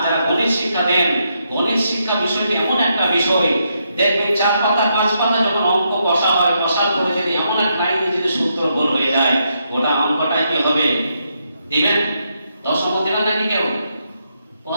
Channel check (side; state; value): both; inverted; correlation -0.79